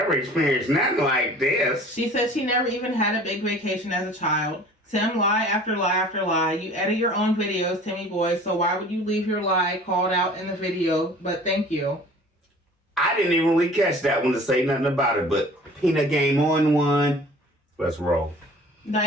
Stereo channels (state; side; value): normal; both; correlation 0.46